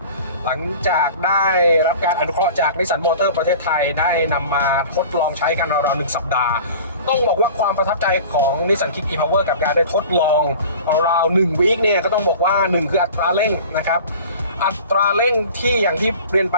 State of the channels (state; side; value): inverted; both; correlation -0.41